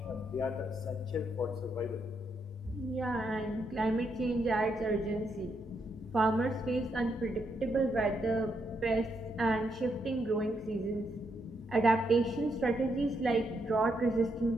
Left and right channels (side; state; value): both; normal; correlation 0.79